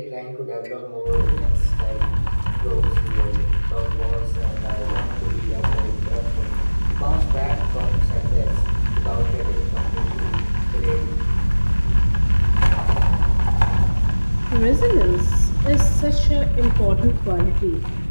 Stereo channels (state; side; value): inverted; both; correlation -1.00